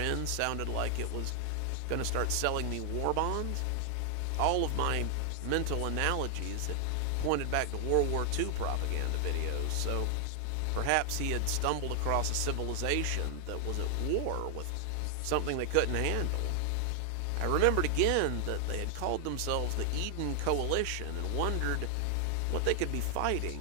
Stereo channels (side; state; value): both; different; correlation 0.00